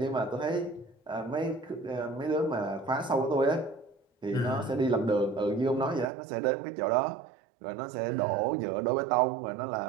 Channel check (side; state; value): left; drops out; at 6.1 s